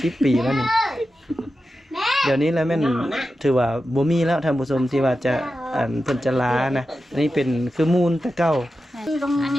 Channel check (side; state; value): both; normal; correlation 0.91